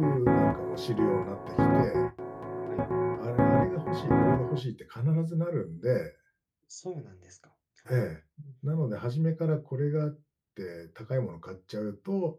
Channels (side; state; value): both; identical; correlation 1.00